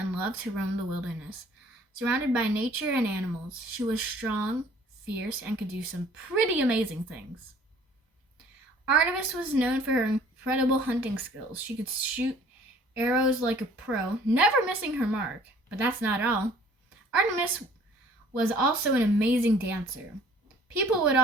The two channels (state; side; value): normal; both; correlation 0.54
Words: loved to roam the wilderness. Surrounded by nature and animals, she was strong, fierce, and could do some pretty amazing things. Artemis was known for her incredible hunting skills. She could shoot arrows like a pro, never missing her mark. But that's not all. Artemis was also an amazing dancer. People would